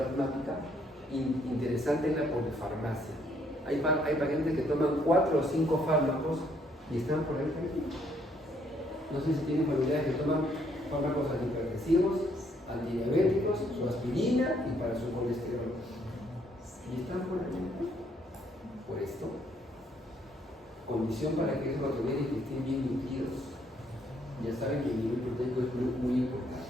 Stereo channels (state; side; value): normal; both; correlation 0.69